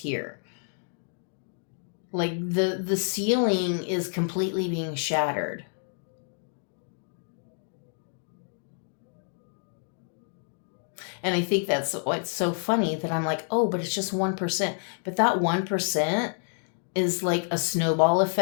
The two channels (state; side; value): silent; right; 59 dB below the other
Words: Like the ceiling is completely being shattered. And I think that's what's so funny that I'm like, oh, but it's just 1%. But that 1% is like a snowball